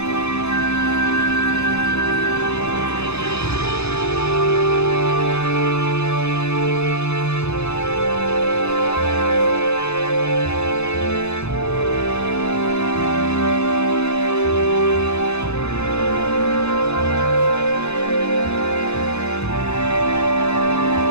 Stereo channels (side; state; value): right; late; 0.80 ms